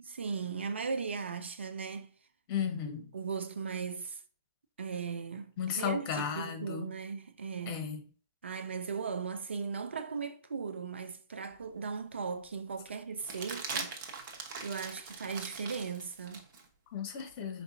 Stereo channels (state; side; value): inverted; both; correlation -0.50